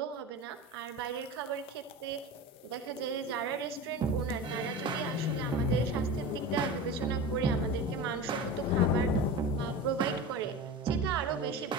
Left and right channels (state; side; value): normal; both; correlation 0.29